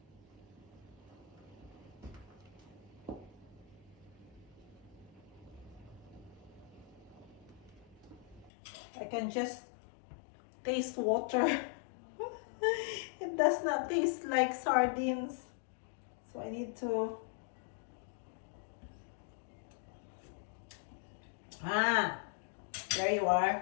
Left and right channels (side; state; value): right; drops out; at 8.5 s